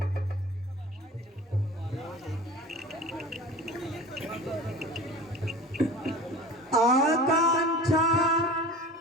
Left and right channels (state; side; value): normal; both; correlation 0.38